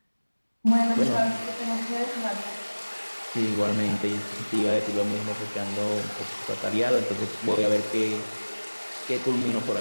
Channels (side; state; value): both; inverted; correlation -1.00